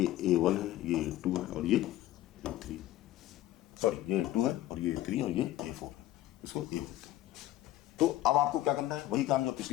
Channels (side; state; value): right; quieter; 14.5 dB